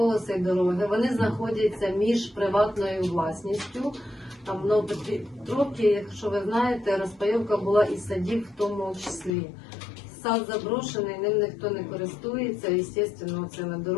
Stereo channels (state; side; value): drops out; right; at 9.3 s